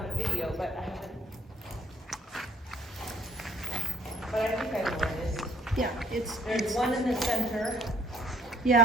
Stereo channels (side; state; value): both; normal; correlation 0.61